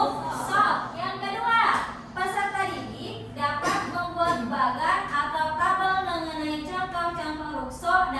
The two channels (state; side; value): identical; both; correlation 1.00